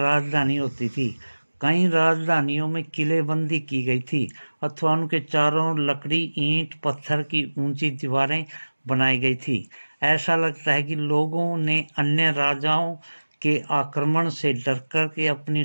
होती थी। कई राजधानियों में किलेबंदी की गई थी अथवा उनके चारों लकड़ी, ईंट, पत्थर की ऊंची दीवारें बनाई गई थी। ऐसा लगता है कि लोगों ने अन्य राजाओं के आक्रमण से डरकर के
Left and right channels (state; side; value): inverted; both; correlation -1.00